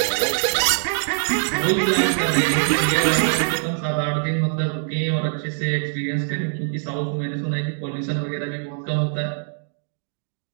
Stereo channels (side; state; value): left; silent; digital silence